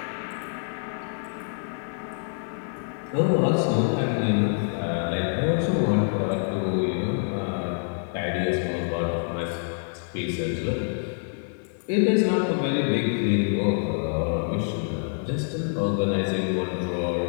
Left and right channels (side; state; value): right; silent; digital silence